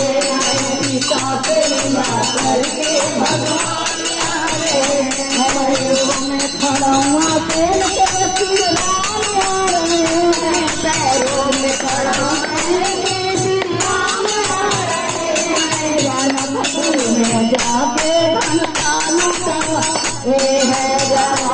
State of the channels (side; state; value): both; identical; correlation 1.00